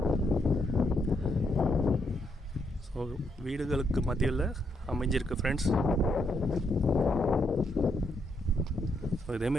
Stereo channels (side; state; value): both; normal; correlation 0.77